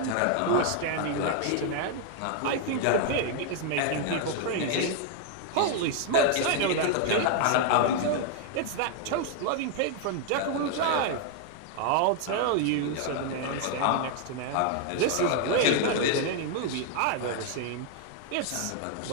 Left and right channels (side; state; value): both; different; correlation 0.00